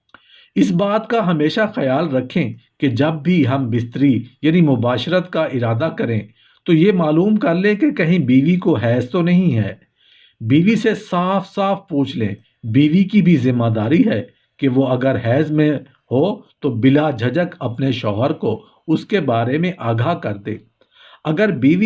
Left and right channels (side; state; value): both; identical; correlation 1.00